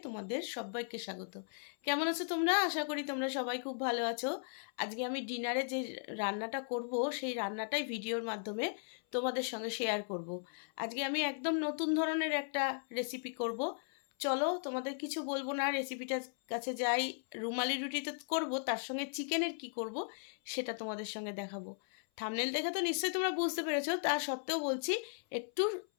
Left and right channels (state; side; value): silent; right; 53 dB below the other